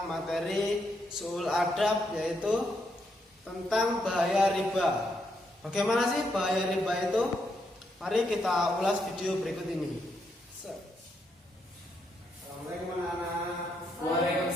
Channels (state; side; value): normal; both; correlation 0.78